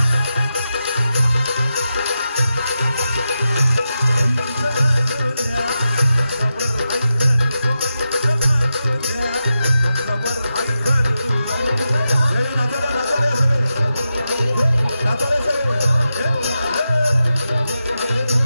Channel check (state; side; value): inverted; both; correlation -0.89